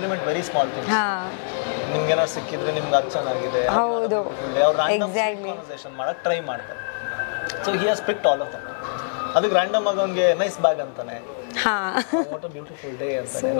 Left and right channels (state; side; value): silent; right; digital silence